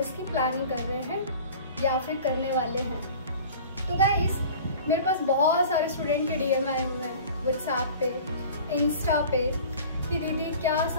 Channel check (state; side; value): inverted; both; correlation -0.42